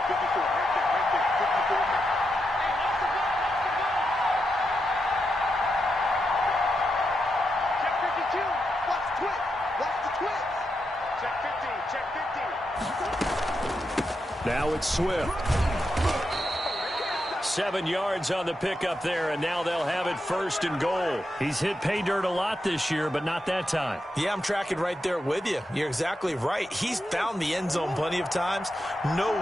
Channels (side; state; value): both; normal; correlation 0.85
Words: 54. Right there. 54. Check 52. Watch the twist. Watch the twist. Check 15. Check 15. Now it's Swift. 7 yards on the pickup there, and now they'll have it 1st and goal. He's hit pay dirt a lot this year, but not that time. Yeah, I'm tracking right there with you. You're exactly right. He's found the end zone plenty of times. No